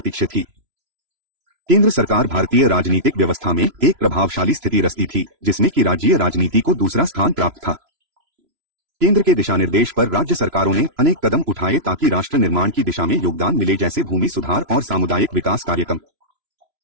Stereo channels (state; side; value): late; left; 3.0 ms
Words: थी। केंद्र सरकार भारतीय राजनीतिक व्यवस्था में एक प्रभावशाली स्थिति रचती थी, जिसमें कि राज्यीय राजनीति को दूसरा स्थान प्राप्त था। केंद्र के दिशानिर्देश पर राज्य सरकारों ने अनेक कदम उठाए ताकि राष्ट्र निर्माण की दिशा में योगदान मिले, जैसे भूमि सुधार और सामुदायिक विकास कार्यक्रम।